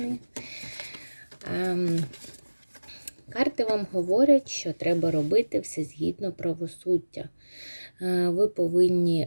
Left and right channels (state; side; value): inverted; both; correlation -1.00